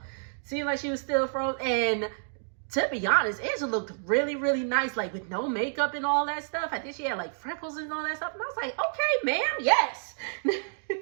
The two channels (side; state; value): left; silent; digital silence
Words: Seemed like she was still frozen. And to be honest, Angela looked really, really nice, like with no makeup and all that stuff. I think she had like freckles and all that stuff. And I was like, okay, ma'am, yes.